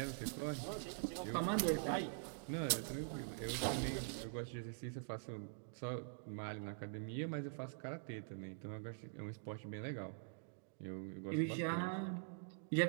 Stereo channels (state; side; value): silent; left; digital silence